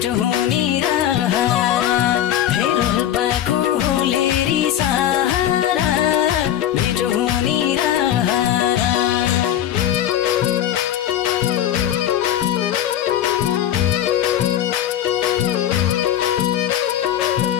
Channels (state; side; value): quieter; right; 11.2 dB